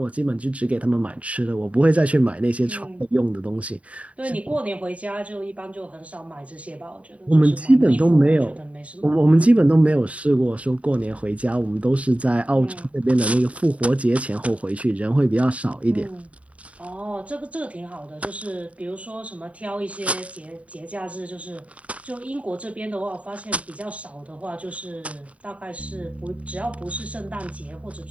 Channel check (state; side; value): late; left; 0.066 ms